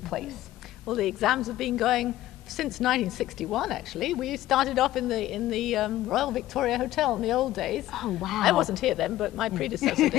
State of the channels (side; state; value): right; quieter; 14.9 dB